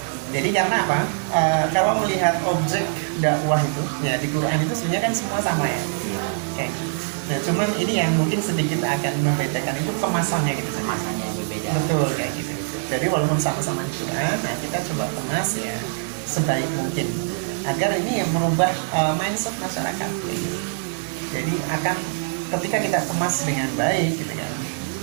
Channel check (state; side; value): silent; left; digital silence